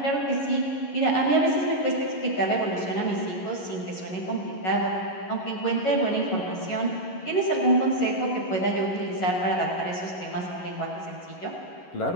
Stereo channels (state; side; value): late; right; 11 ms